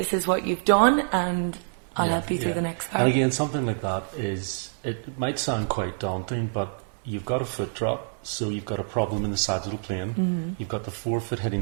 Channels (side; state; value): left; silent; 59 dB below the other